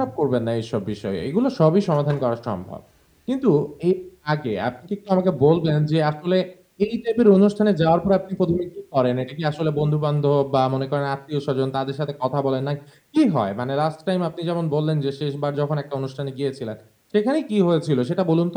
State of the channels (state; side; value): identical; both; correlation 1.00